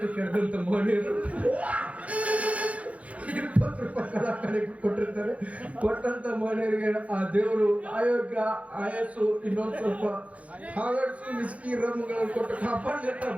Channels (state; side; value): late; left; 0.065 ms